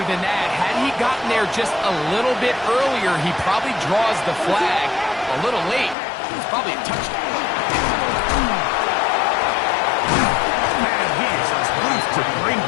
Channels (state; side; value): drops out; right; at 6.0 s